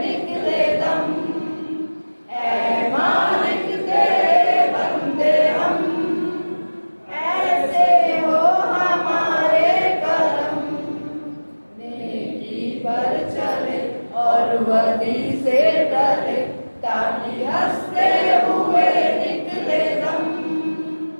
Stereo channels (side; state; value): both; inverted; correlation -1.00